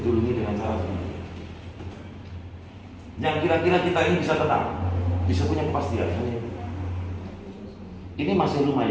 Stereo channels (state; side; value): identical; both; correlation 1.00